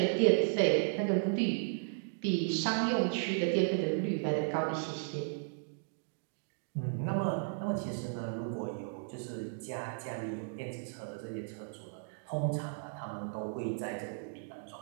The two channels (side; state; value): left; silent; digital silence